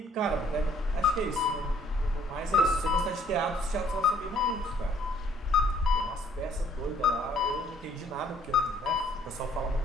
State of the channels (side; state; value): both; normal; correlation 0.61